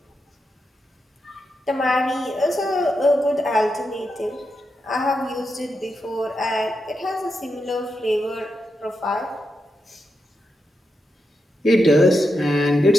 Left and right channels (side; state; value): both; normal; correlation 0.86